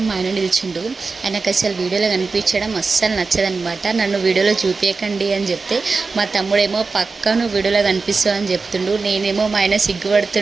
మా ఆయన నిల్చుండు. ఆయనకు అసలు వీడియోలో కనిపించడం అస్సలు నచ్చదనమాట. నన్ను వీడియోలో చూపించకండి అని చెప్తే మా తమ్ముడేమో పక్కా నువ్వు వీడియోలో కనిపిస్తావు అని చెప్తుండు. నేనేమో మా ఆయన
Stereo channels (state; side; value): quieter; left; 4.3 dB